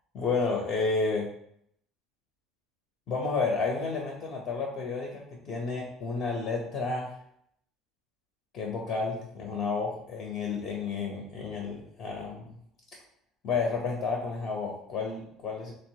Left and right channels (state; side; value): quieter; right; 3.9 dB